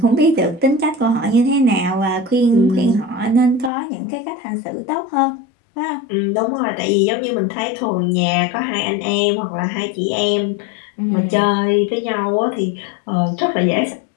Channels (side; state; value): right; drops out; at 3.7 s